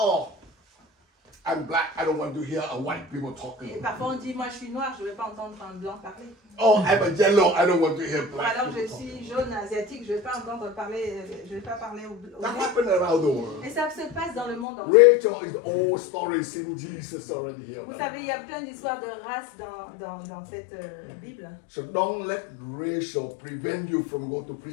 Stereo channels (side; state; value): right; drops out; at 14.7 s